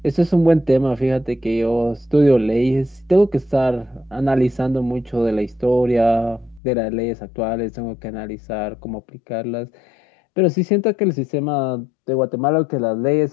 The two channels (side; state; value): right; drops out; at 6.6 s